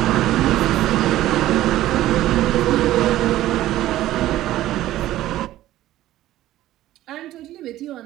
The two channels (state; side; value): quieter; left; 14.5 dB